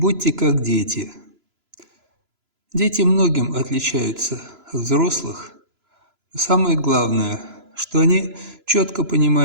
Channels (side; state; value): left; late; 3.0 ms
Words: как дети»? Дети многим отличаются от взрослых. Но самое главное, что они четко